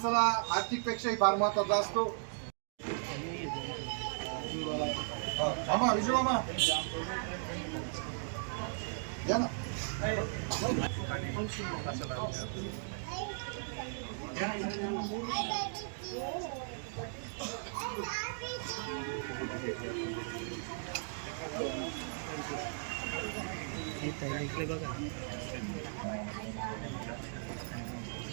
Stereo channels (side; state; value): left; silent; digital silence